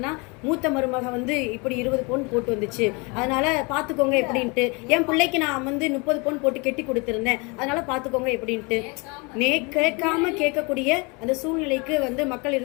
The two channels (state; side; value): quieter; right; 29.4 dB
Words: மூத்த மருமக வந்து இப்படி 20 பவுன் போட்டு வந்துச்சு, அதனால பாத்துக்கோங்க எப்படின்ட்டு. என் பிள்ளைக்கு நான் வந்து 30 பவுன் போட்டு கெட்டி கொடுத்திருந்தேன், அதனால பாத்துக்கோங்க எப்படின்ட்டு. கேட்காம கேட்கக்கூடிய அந்த சூழ்நிலைக்கு வந்து மக்கள்